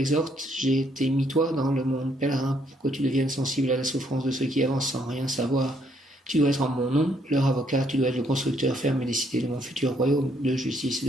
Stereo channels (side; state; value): both; normal; correlation 0.70